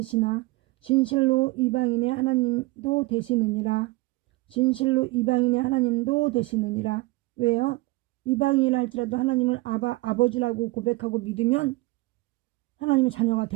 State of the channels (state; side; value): quieter; left; 22.0 dB